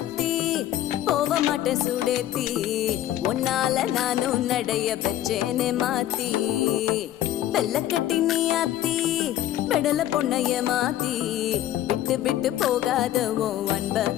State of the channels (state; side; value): quieter; right; 12.8 dB